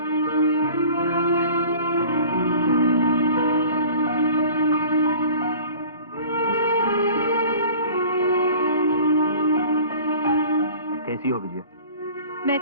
कैसी हो विजया? मैं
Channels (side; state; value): both; inverted; correlation -0.45